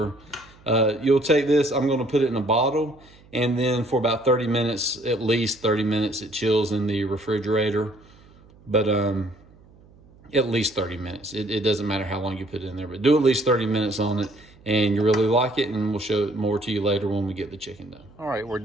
You'll take this, I'm gonna put it in a bottle, and then for about 30 minutes, at least 30 minutes, it chills in the refrigerator. But at least 30 minutes. It doesn't matter how long you put it in there, but do at least 30 minutes on it, and you really like it, and we'll show it more to you later when we get the chicken done. All right, we're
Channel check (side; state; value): right; noise; hum, 26 dB below the sound